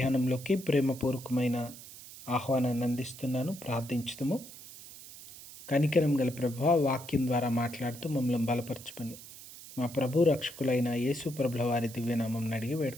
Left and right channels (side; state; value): right; noise; hiss, 16 dB below the sound